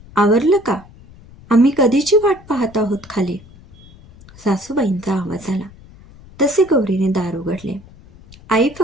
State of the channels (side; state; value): left; noise; rumble, 22 dB below the sound